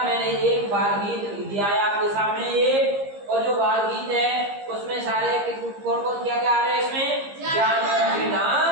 मैंने एक बाल गीत दिया है आपके सामने ये, और जो बाल गीत है उसमें सारे कौन कौन क्या क्या आ रहे हैं? इसमें जानवरों के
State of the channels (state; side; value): late; left; 15 ms